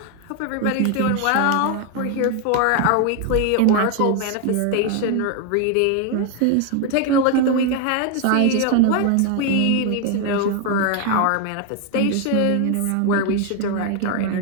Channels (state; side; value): different; both; correlation 0.01